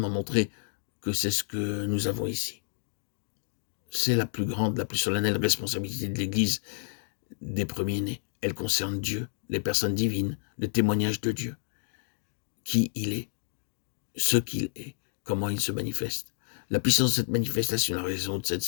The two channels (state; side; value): silent; right; digital silence